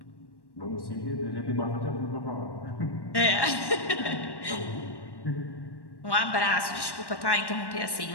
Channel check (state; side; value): late; right; 1.1 ms